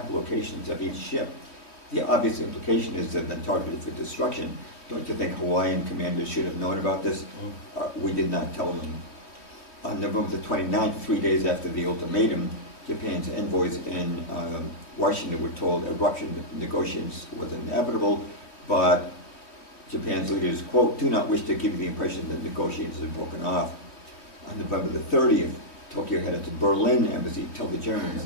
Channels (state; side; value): late; right; 3.1 ms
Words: locations of each ship, the obvious implication is that they're targeted for destruction. Don't you think Hawaiian commanders should have known about this? We did not tell them. On November the 29th, 3 days after the ultimatum, Japan's envoys in Washington were told eruption negotiations was inevitable, but Japan's leaders, quote, do not wish to give you the impression that negotiations have broken off. On November the 30th, Tokyo headed to Berlin embassy to tell the Germans